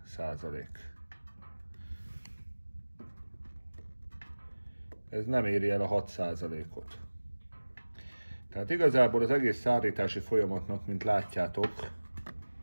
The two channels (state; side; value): inverted; both; correlation -1.00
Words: Ez nem éri el a 6%-ot. Tehát igazából az egész szárítási folyamatnak, mint látjátok,